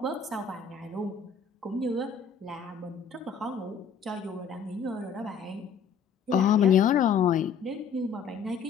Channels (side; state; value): right; quieter; 6.4 dB